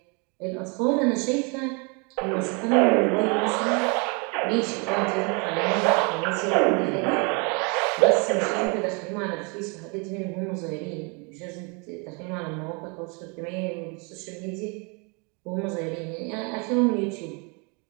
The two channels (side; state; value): left; quieter; 32.5 dB